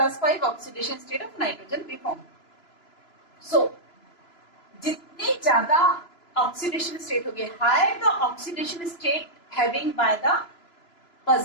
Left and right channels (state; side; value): late; right; 2.9 ms